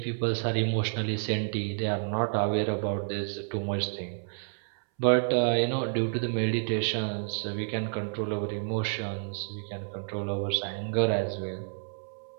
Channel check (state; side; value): silent; left; 58 dB below the other